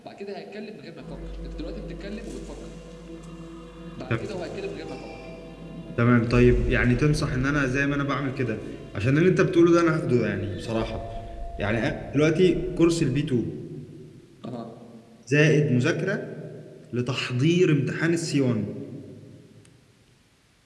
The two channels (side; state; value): both; identical; correlation 1.00